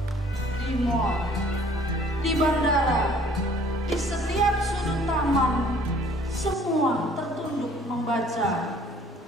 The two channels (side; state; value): both; normal; correlation 0.56